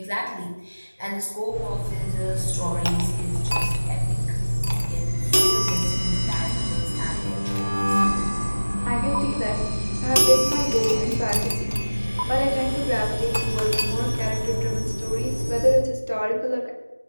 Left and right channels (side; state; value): both; inverted; correlation -1.00